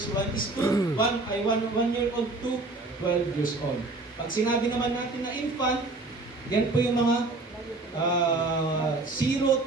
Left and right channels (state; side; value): quieter; left; 3.2 dB